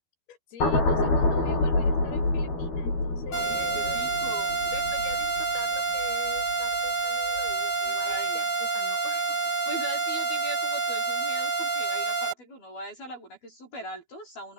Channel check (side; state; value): right; late; 12 ms